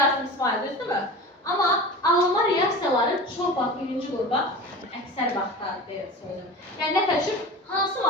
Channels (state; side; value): normal; both; correlation 0.34